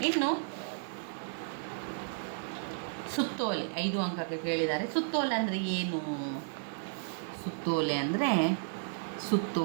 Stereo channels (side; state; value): left; silent; digital silence